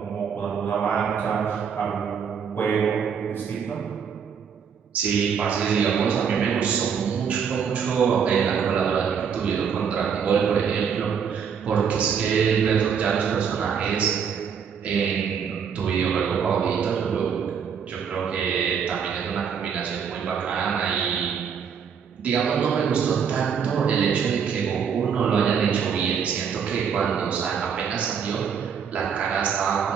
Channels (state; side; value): quieter; left; 7.0 dB